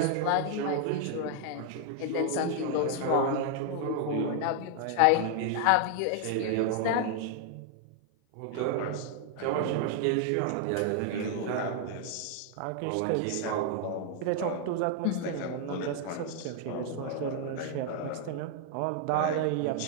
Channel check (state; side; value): different; both; correlation 0.00